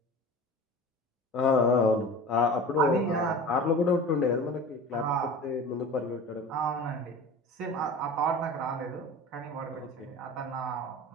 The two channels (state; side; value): normal; both; correlation 0.36